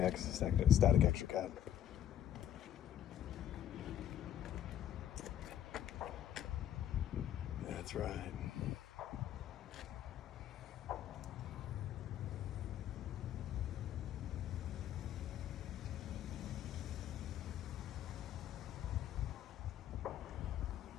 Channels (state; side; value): quieter; right; 10.9 dB